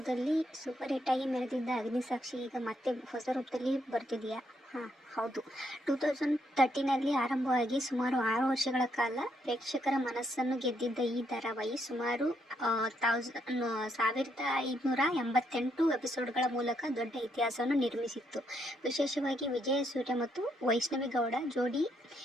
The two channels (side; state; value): both; normal; correlation 0.76